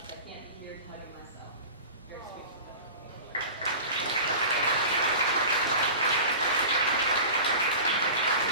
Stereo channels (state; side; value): inverted; both; correlation -0.35